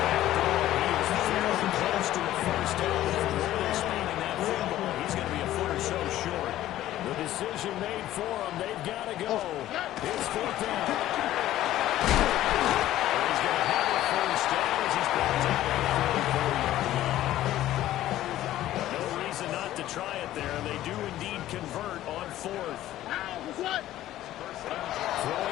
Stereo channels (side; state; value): right; quieter; 13.9 dB